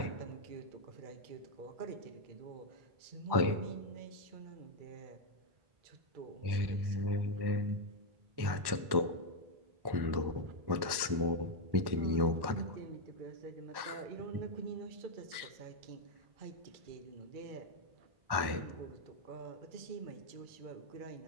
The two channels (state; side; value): late; left; 1.1 ms